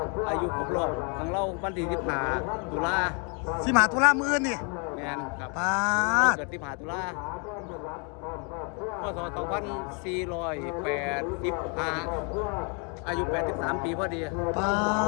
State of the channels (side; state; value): right; quieter; 36.2 dB